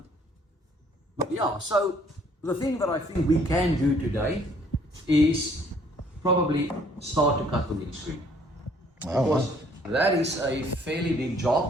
yeah, so the thing that I think we can do today is probably start to cut the windscreen. Because that is a fairly big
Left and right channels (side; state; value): both; normal; correlation 0.62